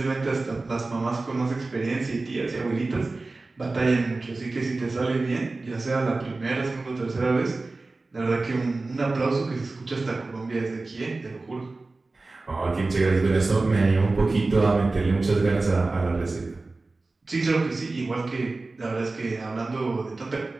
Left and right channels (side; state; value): left; quieter; 3.4 dB